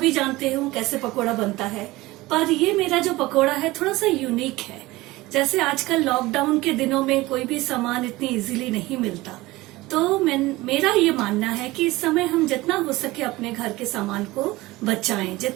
जानते हो कैसे पकोड़ा बनता है, पर ये मेरा जो पकोड़ा है थोड़ा सा यूनिक है। जैसे आजकल लॉकडाउन के दिनों में कोई भी सामान इतनी इजीली नहीं मिलता, तो मेरा ये मानना है कि इस समय हम जितना हो सके अपने घर के सामान को बचाएं,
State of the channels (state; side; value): quieter; left; 19.6 dB